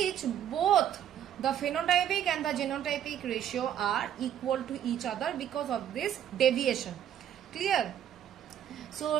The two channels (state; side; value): quieter; left; 10.2 dB